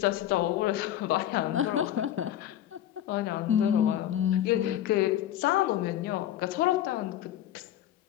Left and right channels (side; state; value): right; quieter; 11.8 dB